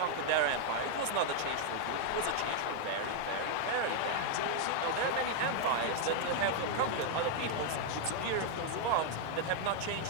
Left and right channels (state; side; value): different; both; correlation 0.00